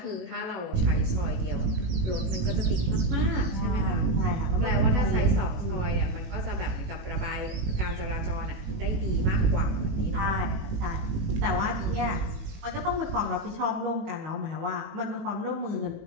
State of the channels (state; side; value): late; left; 18 ms